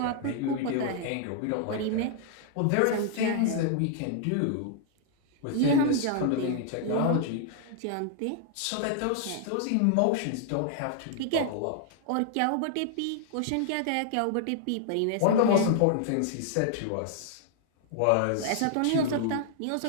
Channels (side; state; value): both; different; correlation -0.01